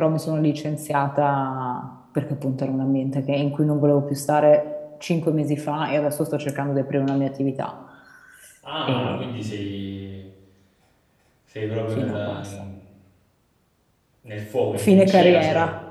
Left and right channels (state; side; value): identical; both; correlation 1.00